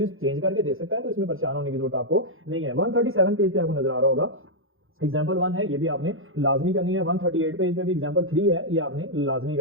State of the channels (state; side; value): late; left; 0.60 ms